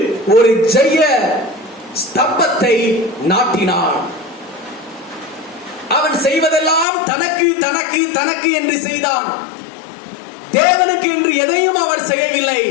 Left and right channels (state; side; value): drops out; right; at 6.9 s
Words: ஒரு ஜெய ஸ்தம்பத்தை நாட்டினான். அவன் செய்வதெல்லாம் தனக்கு தனக்கு தனக்கு என்று செய்தான். தேவனுக்கு என்று எதையும் அவர் செய்யவில்லை.